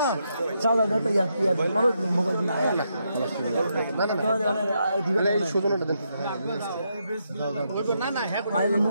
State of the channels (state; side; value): inverted; both; correlation -0.80